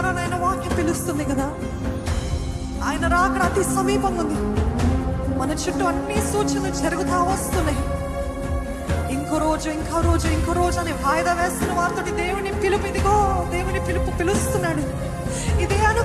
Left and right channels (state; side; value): identical; both; correlation 1.00